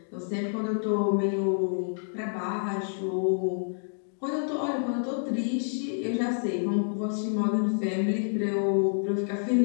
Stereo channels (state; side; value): silent; right; digital silence